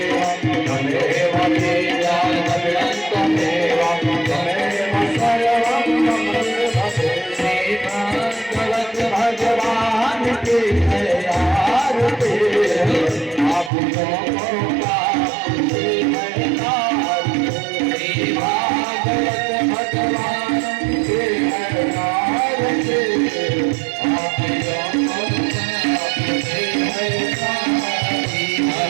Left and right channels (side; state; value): left; drops out; at 13.7 s